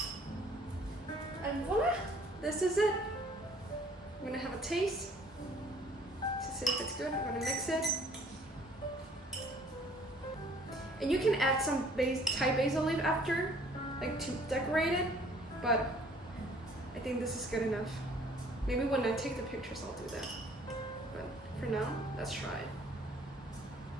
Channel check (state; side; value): normal; both; correlation 0.57